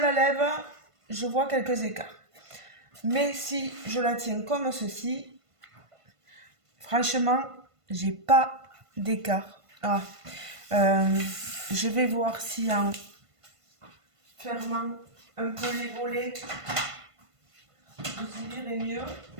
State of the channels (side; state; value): left; late; 1.5 ms